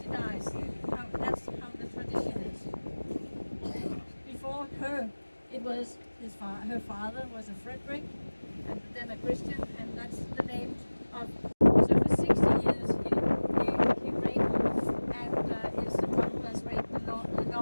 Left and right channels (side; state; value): both; inverted; correlation -1.00